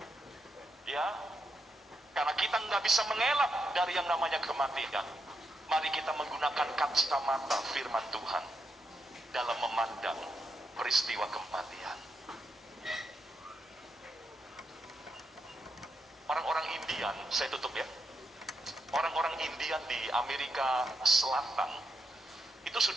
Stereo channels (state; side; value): normal; both; correlation 0.83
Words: Ya, karena kita nggak bisa mengelak dari yang namanya kematian. Mari kita menggunakan kacamata firman Tuhan dalam memandang peristiwa kematian. Orang-orang Indian, saya tutup ya. Orang-orang Indian di Amerika Selatan itu